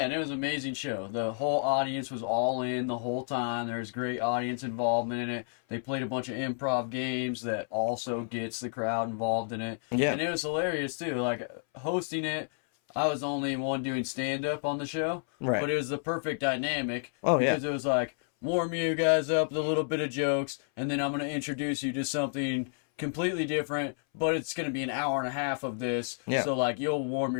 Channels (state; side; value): silent; right; 58 dB below the other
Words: and it was an amazing show. The whole audience was all in the whole time. There was great audience involvement in it. They played a bunch of improv games that also gets the crowd involved in it. Yeah. And it was hilarious too. Like hosting it, I was the only one doing stand up on the show. Right. But it was the perfect dynamic Oh, yeah. because it was like warm you guys up with a little bit of jokes, and then I'm going to introduce you to something completely different, but it's going to be an hour and a half of this. Yeah. So like you'll warm